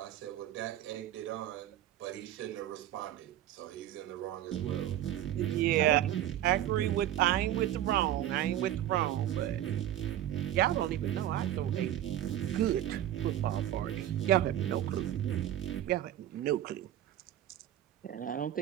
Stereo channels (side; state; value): left; quieter; 12.2 dB